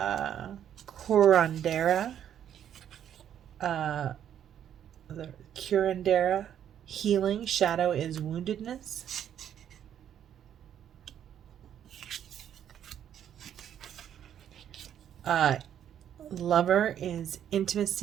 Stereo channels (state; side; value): quieter; left; 9.8 dB